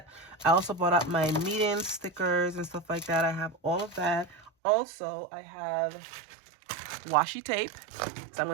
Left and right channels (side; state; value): left; drops out; at 4.5 s